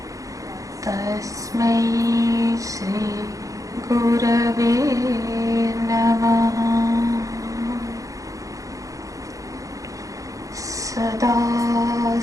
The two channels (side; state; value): left; late; 0.16 ms